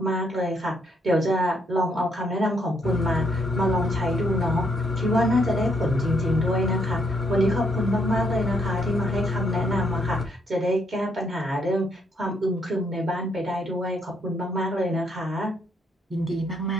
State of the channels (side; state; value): both; normal; correlation 0.72